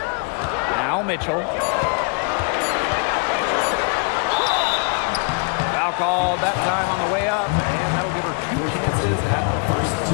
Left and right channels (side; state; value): right; quieter; 38.0 dB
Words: Now Mitchell. Foul called that time on the way up, and that will give her 2 chances at the first